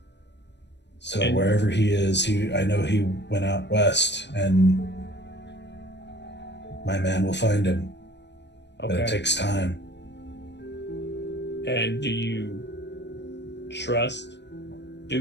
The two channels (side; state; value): right; late; 0.51 ms